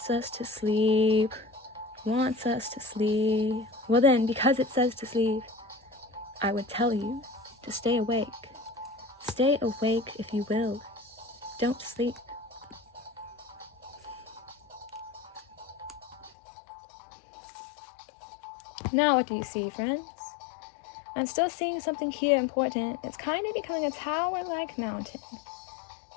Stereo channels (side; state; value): right; drops out; at 16.3 s